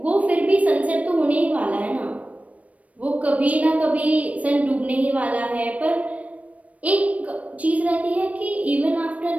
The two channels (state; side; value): late; left; 0.067 ms